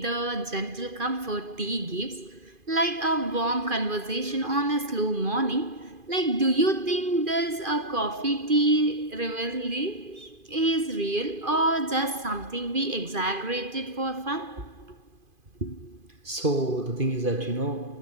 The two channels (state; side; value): late; left; 2.5 ms